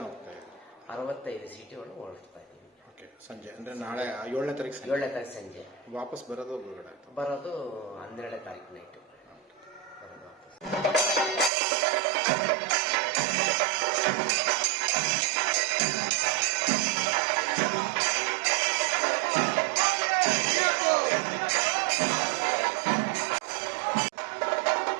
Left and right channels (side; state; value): left; drops out; at 11.5 s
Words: ಹೋಗ್ತಾ ಇದ್ದಾರೆ? 65 ಸೀಟುಗಳು ಹೊರಡ್ತಾ ಇದ್ದೀವಿ. ಸಂಜೆ ಅಂದ್ರೆ ನಾಳೆ 7ನೇ ತಾರೀಕು ಸಂಜೆ ವಾಪಸ್ ಬರೋದು 12ನೇ ತಾರೀಕು ನೈಟು ಬರೋದು ವಾಪಸ್.